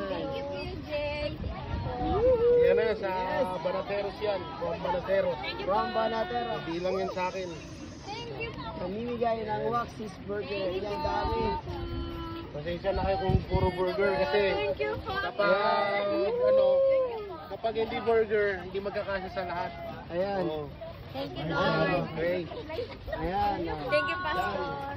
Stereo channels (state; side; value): identical; both; correlation 1.00